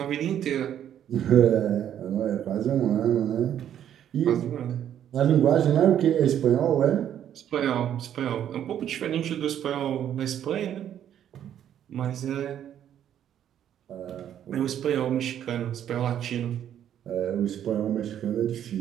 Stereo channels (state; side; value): quieter; left; 10.2 dB